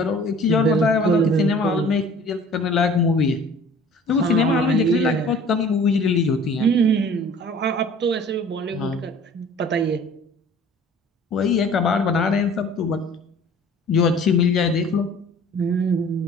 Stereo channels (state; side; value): normal; both; correlation 0.48